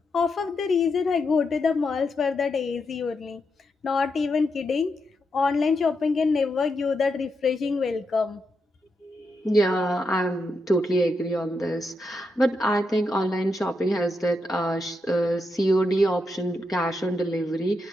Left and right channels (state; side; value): normal; both; correlation 0.84